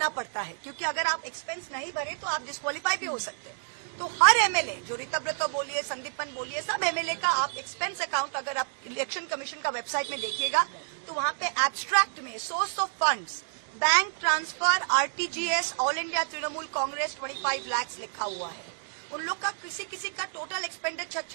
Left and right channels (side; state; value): left; silent; digital silence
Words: पड़ता है, क्योंकि अगर आप एक्सपेंस नहीं भरे तो आप डिस्क्वालीफाई भी हो सकते हैं। तो हर एमएलए, जो ऋतव्रत बोलिए, संदीपन बोलिए, सब एमएलए का आप एक्सपेंस अकाउंट अगर आप इलेक्शन कमीशन का वेबसाइट में देखिएगा तो वहां पे एब्स्ट्रैक्ट में source of funds, bank transfer, RTGS, all India Trinamool Congress 25 lakh लिखा हुआ है। उन लोग का किसी का टोटल एक्सपेंडिचर